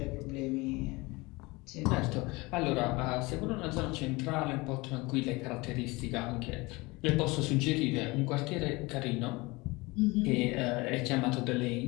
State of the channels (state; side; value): quieter; right; 23.6 dB